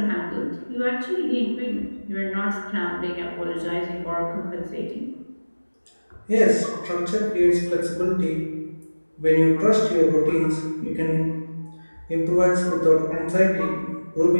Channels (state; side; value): inverted; both; correlation -1.00